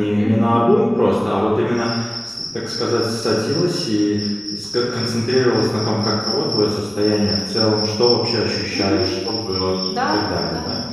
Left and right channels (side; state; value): right; noise; rumble, 27 dB below the sound